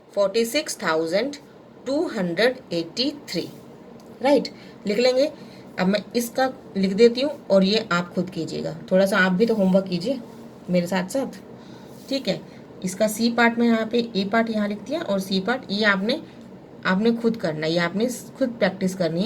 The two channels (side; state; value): both; identical; correlation 1.00